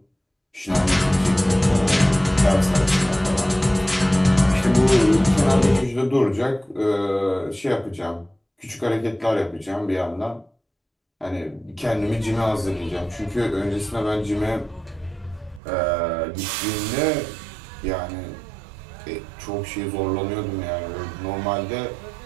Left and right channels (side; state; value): left; drops out; at 15.6 s